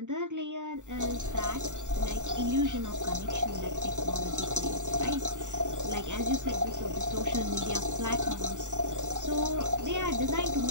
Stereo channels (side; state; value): left; late; 0.85 ms